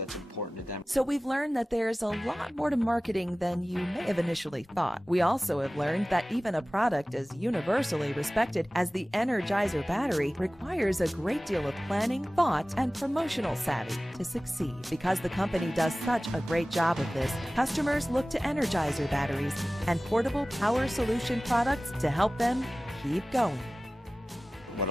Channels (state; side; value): normal; both; correlation 0.97